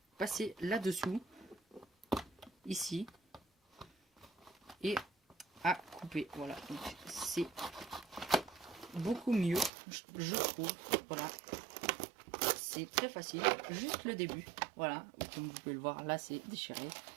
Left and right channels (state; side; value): drops out; left; at 9.7 s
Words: passer là-dessous ici et à couper. Voilà, donc c'est beaucoup mieux, je trouve. Voilà, c'est très facile, juste le début. Voilà, comme vous pouvez le voir, là c'est déchiré